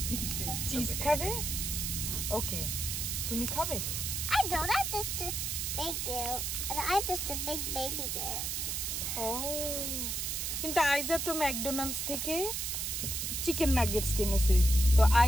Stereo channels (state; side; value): noise; right; hiss, 1 dB below the sound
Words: চিজ খাবে? ওকে, তুমি খাবে? I don't. I'm just a big girl. And I'm just a big baby girl. ও, কিন্তু আইজা তো ম্যাকডোনাল্ডস থেকে চিকেন নাগেটস কিনেছে, তো